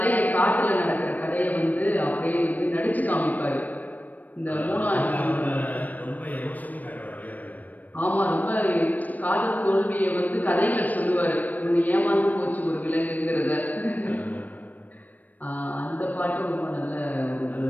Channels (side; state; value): right; late; 0.081 ms